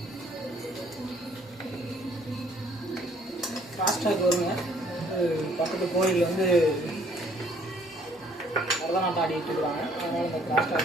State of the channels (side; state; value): both; normal; correlation 0.61